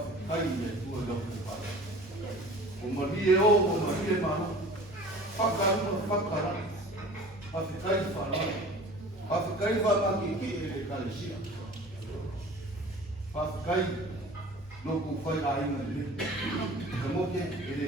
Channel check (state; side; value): normal; both; correlation 0.43